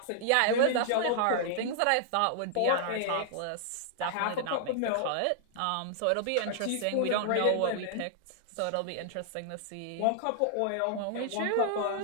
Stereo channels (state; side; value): different; both; correlation -0.01